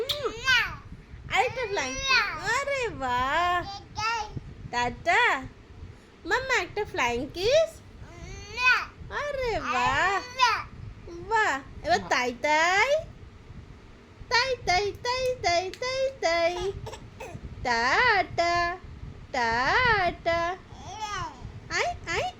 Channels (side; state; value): both; identical; correlation 1.00